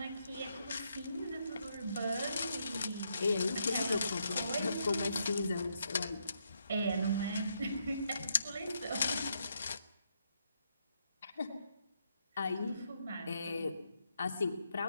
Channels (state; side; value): inverted; both; correlation -0.78